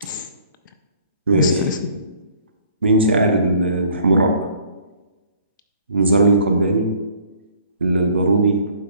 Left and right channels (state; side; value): inverted; both; correlation -0.57